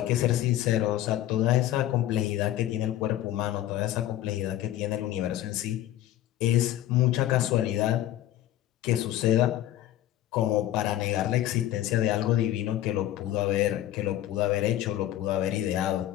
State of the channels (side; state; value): right; quieter; 13.3 dB